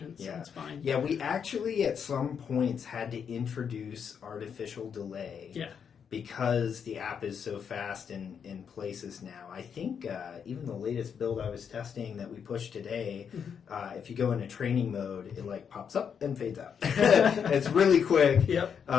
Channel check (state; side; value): quieter; right; 7.2 dB